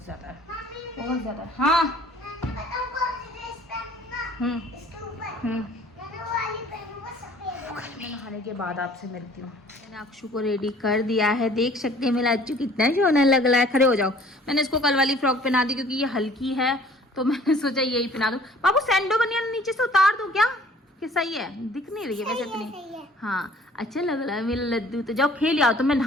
ज़्यादा है, बहुत ज़्यादा। हाँ मैं नहाने के बाद आपसे मिलती हूँ। मैंने अक्षु को रेडी कर दिया है, देख सकते हैं मेरा अच्चू कितना सोना लग रहा है। खड़े हो जाओ। मैंने इसको कल वाली फ्रॉक पहना दी क्योंकि ये हल्की है, तो मैंने सोचा यही पहना दूँ। बाबू सैंडो बनियान नीचे से उतार दूँ क्या? कि सही है? दिख नहीं रही है वैसे इतनी। हाँ अच्छा लग रहा है मेरा लड्डू। तो जाओ खेल आओ, तो मैं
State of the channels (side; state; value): both; normal; correlation 0.53